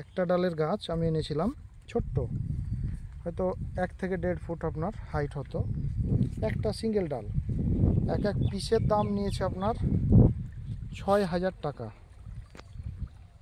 ডালের গাছ আমি এনেছিলাম, ছোট্ট, হয়তো 1 থেকে 1.5 ফুট আপনার হাইট হতো, একটা সিঙ্গেল ডাল। এক পিসের দাম নিয়েছে আপনার 6,000 টাকা।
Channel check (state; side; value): identical; both; correlation 1.00